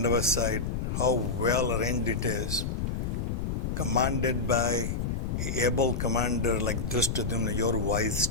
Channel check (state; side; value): noise; left; rumble, 1 dB below the sound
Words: side, how well arranged it is, commanded by an able commander like Duryodhana, your wise